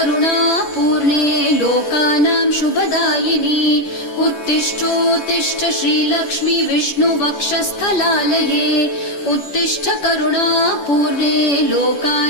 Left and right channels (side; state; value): right; late; 10 ms